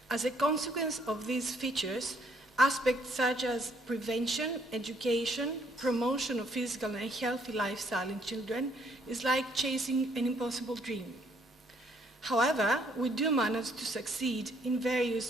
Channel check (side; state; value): both; normal; correlation 0.67